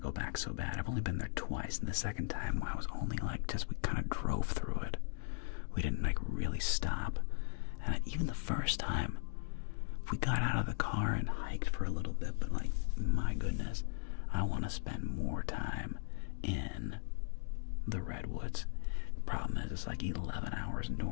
back so bad. I've only been there twice, and the second time I was only like, we kind of drove through it. We didn't like really stop. And even the first time, we got out of the car and hiked for a little bit, but like, my goodness, I want to spend more time in the redwoods. The problem is it's like 11 hours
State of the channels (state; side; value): silent; right; digital silence